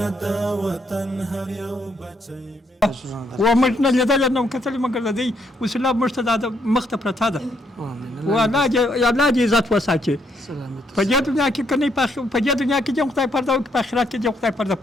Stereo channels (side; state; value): both; normal; correlation 0.73